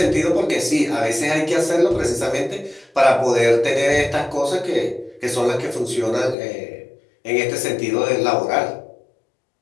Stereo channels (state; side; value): drops out; right; at 6.4 s